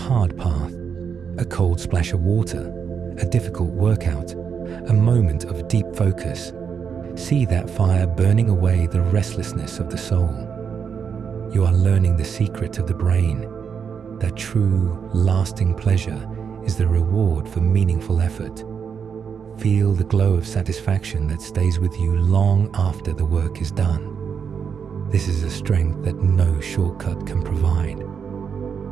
path, a cold splash of water, a difficult workout, a moment of deep focus, see that fire burning away the restlessness of the soul. You are learning the secret of the brain, that true, lasting pleasure is the reward for meaningful effort. Feel the glow of satisfaction that stays with you long after the work is done. This is a strength that no shortcut can provide.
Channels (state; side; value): quieter; left; 6.8 dB